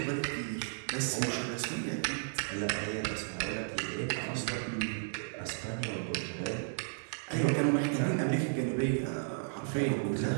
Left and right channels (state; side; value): silent; left; digital silence